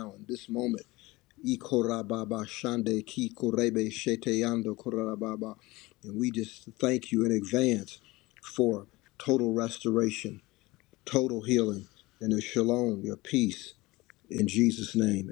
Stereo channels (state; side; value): quieter; right; 21.2 dB